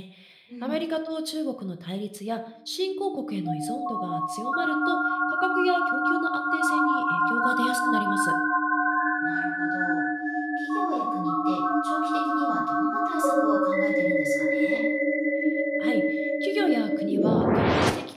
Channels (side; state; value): both; identical; correlation 1.00